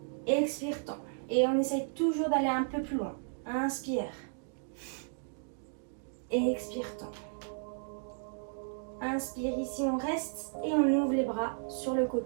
Expire, tends. Et on essaye toujours d'aller un peu plus loin. Inspire. Expire, tends. Inspire, ici on reste et on ouvre les bras sur le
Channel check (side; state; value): left; silent; digital silence